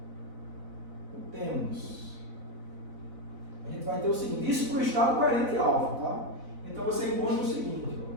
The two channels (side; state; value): left; late; 4.0 ms